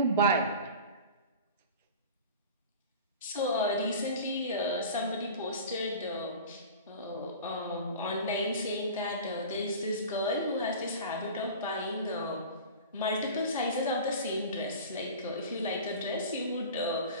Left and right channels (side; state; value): both; inverted; correlation -0.37